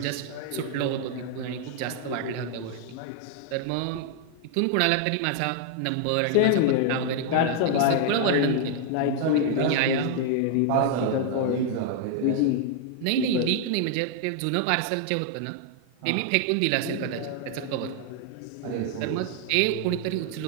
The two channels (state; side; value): different; both; correlation 0.00